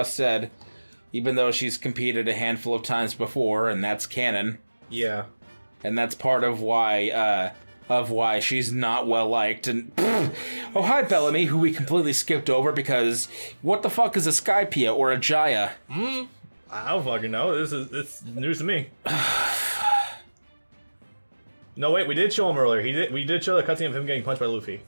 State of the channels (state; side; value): inverted; both; correlation -1.00